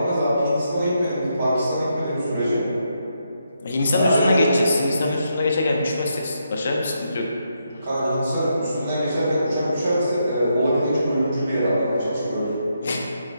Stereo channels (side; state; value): both; inverted; correlation -0.80